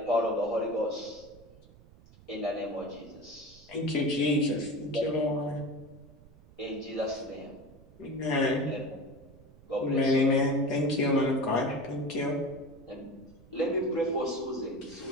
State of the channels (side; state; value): right; noise; rumble, 23 dB below the sound